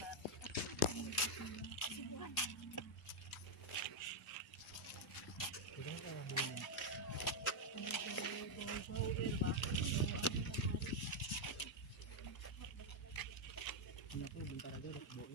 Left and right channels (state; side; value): normal; both; correlation 0.00